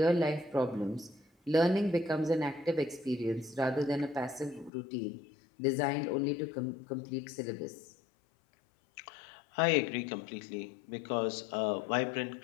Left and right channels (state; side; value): drops out; right; at 4.7 s